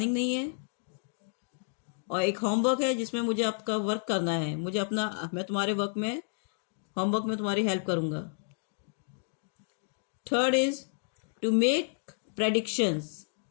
नहीं है, और एक होमवर्क है जिसमें मुझे आपका वर्क करना है. मैं तुम्हारे होमवर्क में तुम्हारी हेल्प करूंगा. Third is to make predictions.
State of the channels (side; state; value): right; silent; digital silence